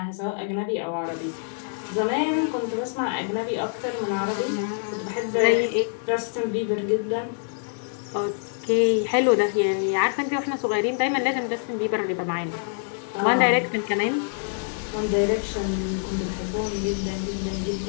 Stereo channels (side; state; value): right; silent; digital silence